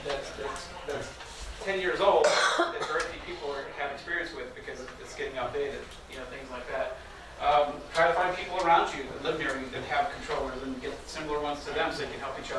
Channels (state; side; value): identical; both; correlation 1.00